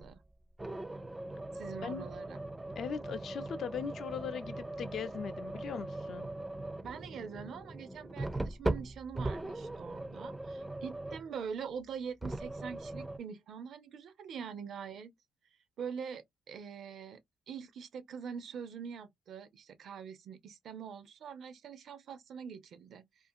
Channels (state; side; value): normal; both; correlation 0.81